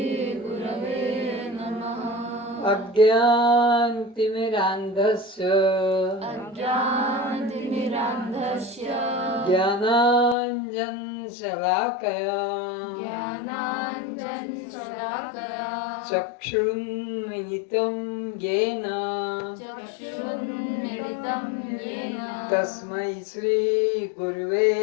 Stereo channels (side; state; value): right; drops out; at 10.4 s